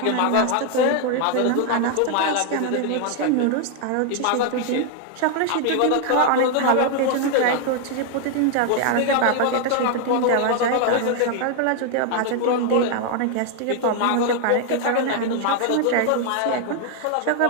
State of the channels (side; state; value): both; different; correlation 0.00